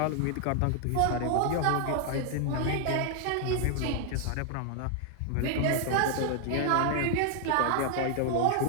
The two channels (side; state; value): both; different; correlation 0.00